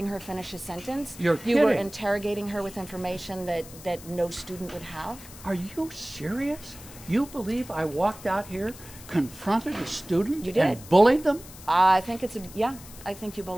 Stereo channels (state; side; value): noise; left; hiss, 17 dB below the sound